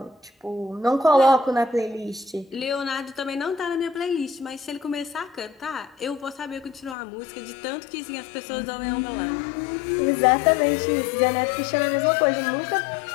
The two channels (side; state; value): right; drops out; at 7.0 s